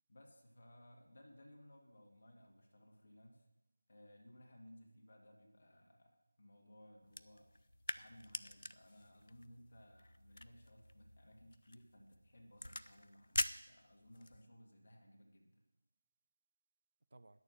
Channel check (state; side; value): inverted; both; correlation -0.93